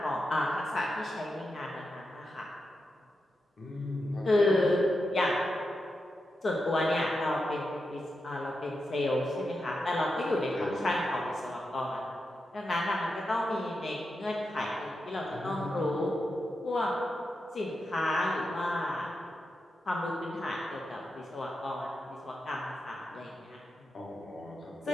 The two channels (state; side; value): normal; both; correlation 0.88